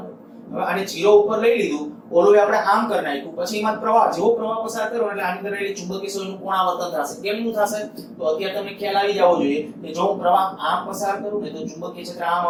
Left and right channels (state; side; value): identical; both; correlation 1.00